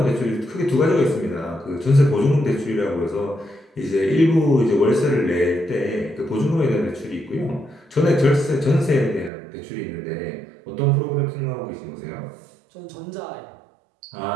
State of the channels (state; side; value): drops out; left; at 9.3 s